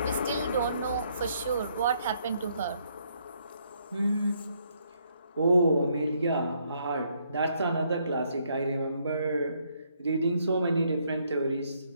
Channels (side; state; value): both; inverted; correlation -0.71